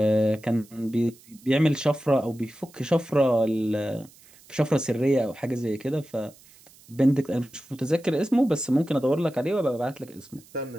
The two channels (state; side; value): noise; right; hiss, 25 dB below the sound